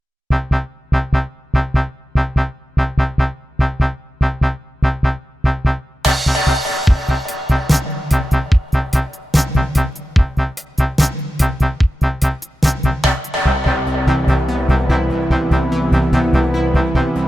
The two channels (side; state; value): both; normal; correlation 0.93